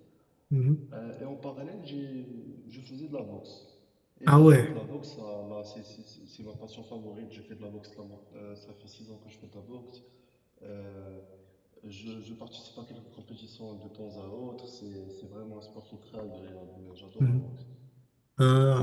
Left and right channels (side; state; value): both; identical; correlation 1.00